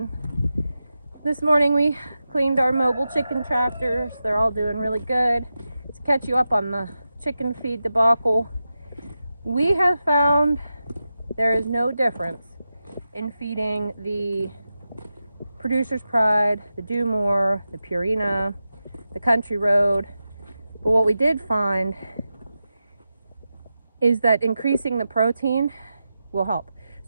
This morning we cleaned our mobile chicken tractors. They're all doing really good. To catch you up on the chicken feed debacle, we have found there is no difference in feeding the Producer's Pride, the Do More, the Purina, the Country Road. But what we did find is that increasing the protein will help.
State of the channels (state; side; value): inverted; both; correlation -0.91